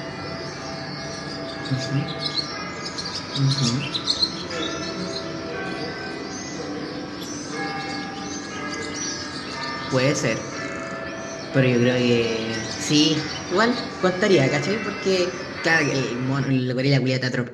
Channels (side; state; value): both; identical; correlation 1.00